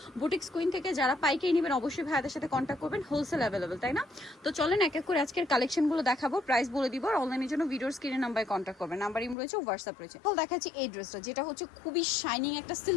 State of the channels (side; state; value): right; drops out; at 9.3 s